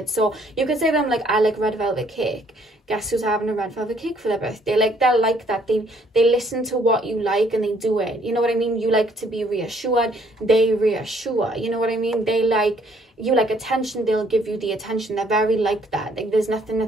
So you could say to them, like, I like red velvet cake. Guess who's having a red velvet cake for their birthday? Like, they're like that. They listen to what you like and they do it. You know what I mean? You like to be reassured, they reassure. You know what I mean? They like, you like attention, they'll give you the attention. They're very like that. Like, there's nothing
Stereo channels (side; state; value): both; normal; correlation 0.64